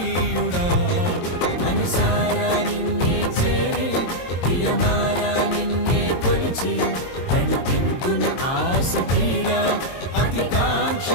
మనసారా నిన్నే చేరి ప్రియమారా నిన్నే కొలిచి నన్ను తింటును ఆశ తీరా అతి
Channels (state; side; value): late; right; 22 ms